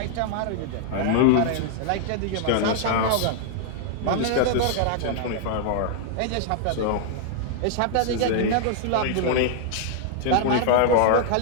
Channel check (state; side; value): different; both; correlation 0.00